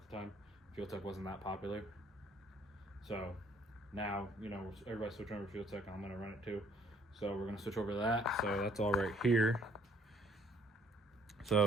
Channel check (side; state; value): both; normal; correlation 0.62